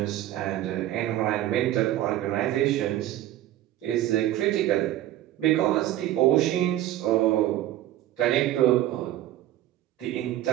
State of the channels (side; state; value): left; quieter; 13.8 dB